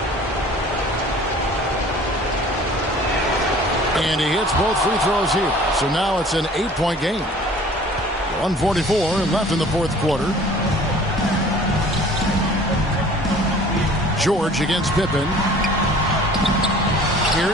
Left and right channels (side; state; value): both; normal; correlation 0.48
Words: And he hits both free throws here. So now it's an 8-point game. 1:44 left in the fourth quarter. George against Pippen.